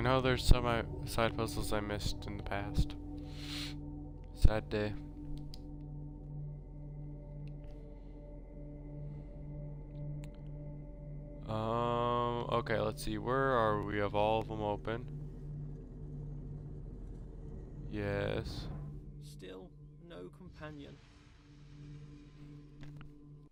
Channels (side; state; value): both; identical; correlation 1.00